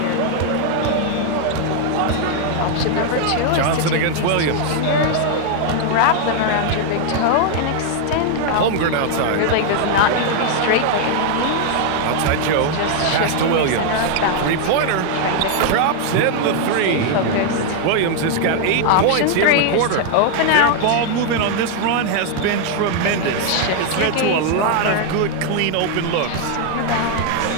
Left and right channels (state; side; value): different; both; correlation 0.00